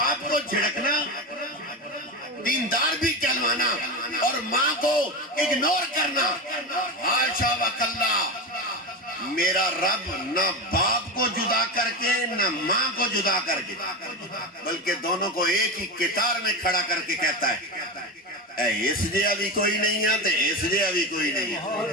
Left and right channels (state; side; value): normal; both; correlation 0.20